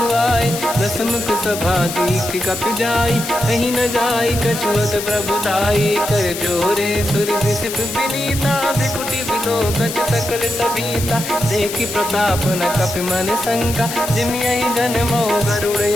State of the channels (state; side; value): noise; left; hiss, 7 dB below the sound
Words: आए। दसमुख सभा दीख कपि जाई कहीं न जाई कछुअत प्रभु दाई। कर जोरे सुर विसिप विनीता बिकुटी बिलोकत सकल सबीता। देखि प्रताप न कपि मन शंका जिमियहि जन मो